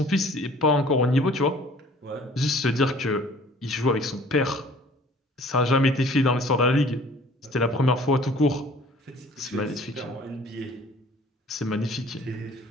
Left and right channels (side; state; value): both; normal; correlation 0.52